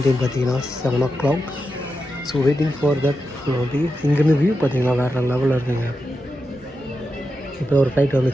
டைம் பார்த்தீங்கன்னா 7 o'clock. So waiting for that. இங்கேருந்து வியூ பார்த்தீங்கன்னா வேறு லெவலில் இருக்குங்க. இப்போ ஒரு ஃப்ளைட்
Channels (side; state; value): both; normal; correlation 0.88